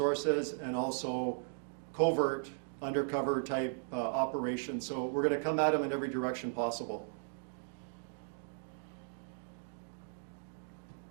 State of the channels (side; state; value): left; silent; digital silence